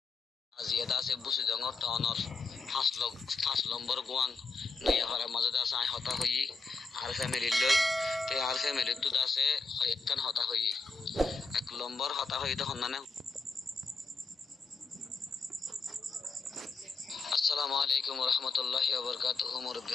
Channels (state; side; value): quieter; right; 4.1 dB